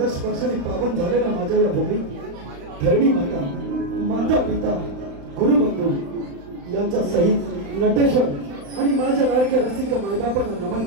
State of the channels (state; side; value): late; left; 35 ms